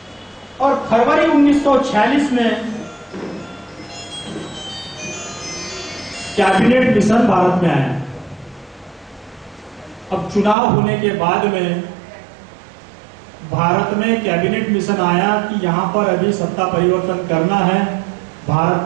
और फरवरी 1946 में कैबिनेट मिशन भारत में आया। अब चुनाव होने के बाद में भारत में कैबिनेट मिशन आया कि यहां पर अभी सत्ता परिवर्तन करना है, भारत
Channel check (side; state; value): left; drops out; at 10.6 s